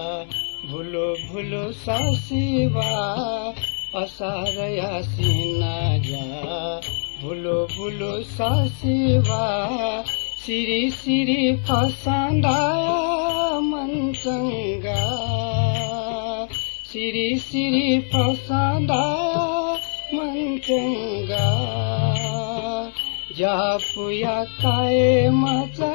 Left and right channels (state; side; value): silent; right; digital silence